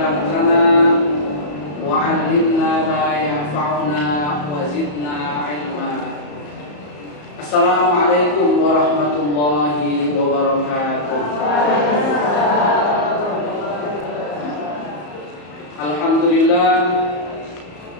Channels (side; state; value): right; late; 34 ms